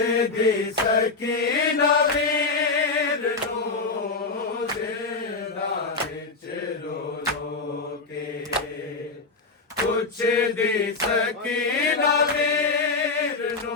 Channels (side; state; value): right; quieter; 4.0 dB